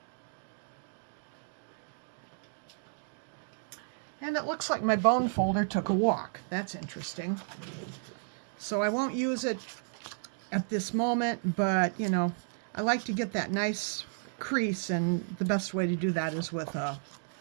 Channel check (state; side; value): silent; left; digital silence